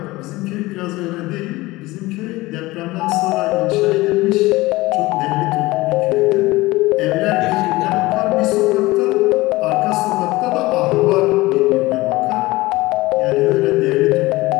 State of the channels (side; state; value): right; quieter; 20.0 dB